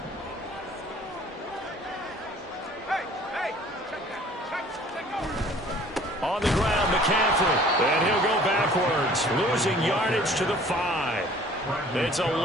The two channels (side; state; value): both; normal; correlation 0.52